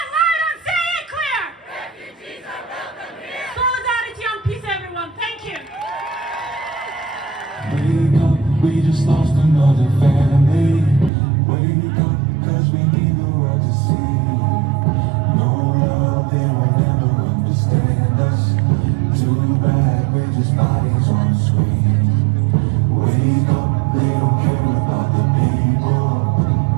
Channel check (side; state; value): left; drops out; at 11.1 s